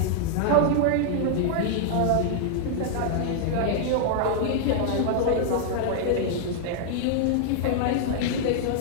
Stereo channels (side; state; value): both; different; correlation -0.01